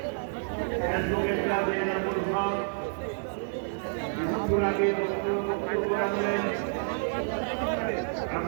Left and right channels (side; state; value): left; silent; digital silence